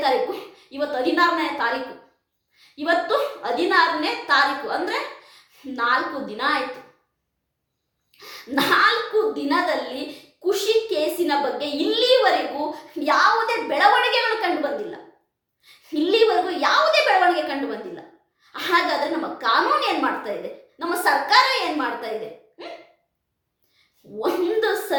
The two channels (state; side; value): identical; both; correlation 1.00